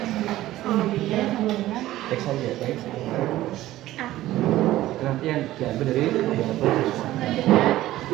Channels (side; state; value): left; quieter; 15.2 dB